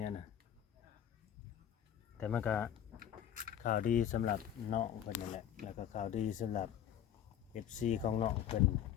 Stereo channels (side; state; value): right; quieter; 10.2 dB